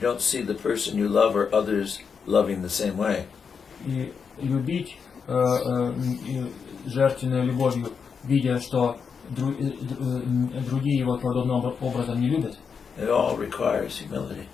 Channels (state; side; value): quieter; right; 6.1 dB